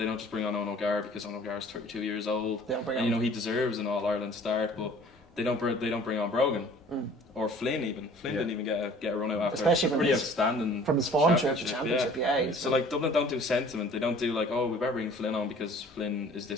bring on Owen O'Gara because Owen O'Gara is 32 years old. They don't bring on. He deserves an All-Ireland start, but they don't bring on Brogan or Flynn even. Flynn didn't even get a run out after especially a pretty outstanding from his form trip to championship. So like Dublin don't do sentiment. They don't do like, oh, we better bring Flynn on because Flynn is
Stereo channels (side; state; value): both; normal; correlation 0.50